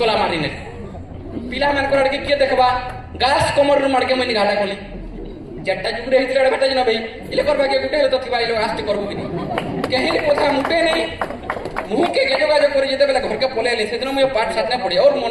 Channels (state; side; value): identical; both; correlation 1.00